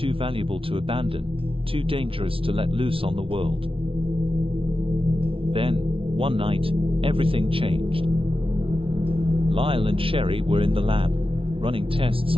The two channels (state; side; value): late; left; 0.26 ms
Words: valuable to abandon, too dangerous to let loose on the world. Then, one night, everything changed. Lyle and Sherry were in the lab, running tests